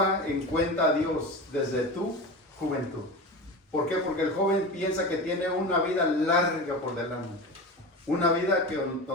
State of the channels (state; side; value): normal; both; correlation 0.27